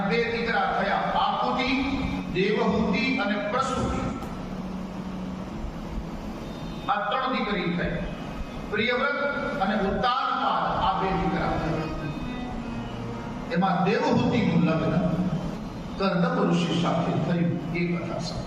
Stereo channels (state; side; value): identical; both; correlation 1.00